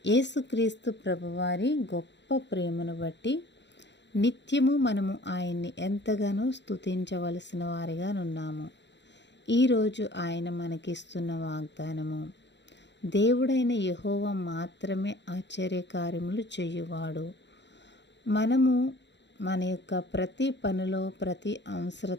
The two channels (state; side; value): late; right; 0.52 ms